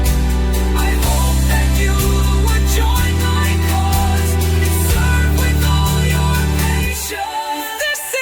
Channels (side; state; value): both; identical; correlation 1.00